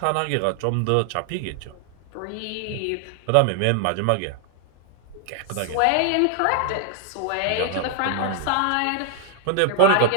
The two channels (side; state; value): both; different; correlation 0.00